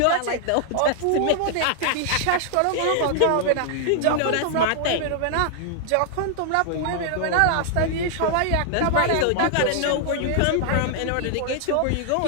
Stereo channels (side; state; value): both; different; correlation 0.00